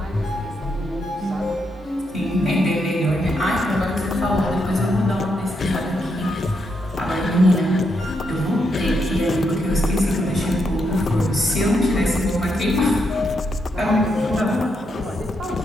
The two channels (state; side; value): normal; both; correlation 0.80